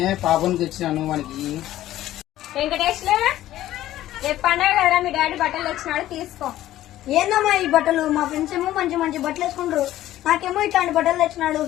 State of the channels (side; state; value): right; quieter; 14.0 dB